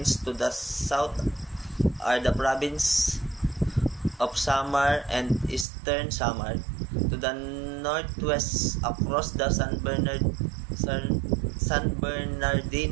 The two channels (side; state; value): left; drops out; at 5.7 s